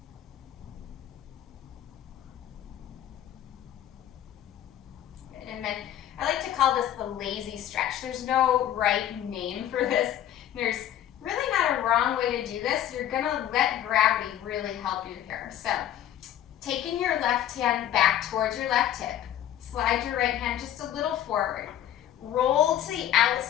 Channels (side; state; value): right; quieter; 11.5 dB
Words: And then I like to call this the lazy stretch. There's no right name for this. There's really not a wrong way to do this. You're gonna let gravity really help you here. So, taking your left hand back towards your left hip, slide your right hand just a little forward. Roll to the